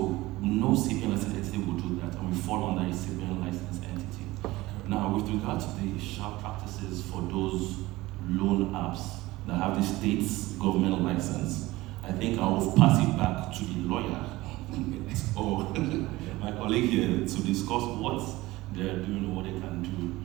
no CBN licensed entity will do that, and we fall under a CBN licensed entity. Now, with regard to the sharp practices for those loan apps that have the state's government license, I think I will pass it back to the lawyer or my colleague here to discuss what they're doing or what they can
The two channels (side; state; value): left; quieter; 19.1 dB